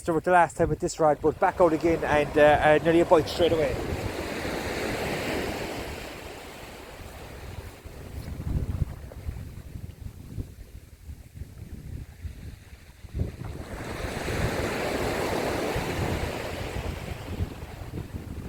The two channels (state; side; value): identical; both; correlation 1.00